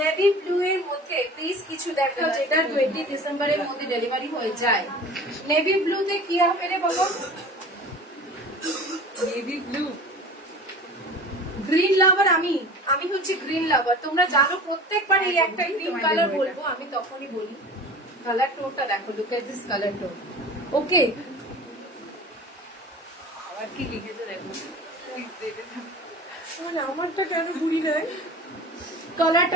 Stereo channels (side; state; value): both; normal; correlation 0.39